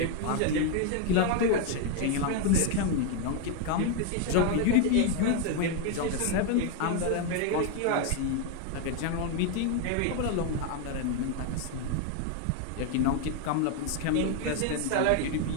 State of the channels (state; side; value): different; both; correlation 0.01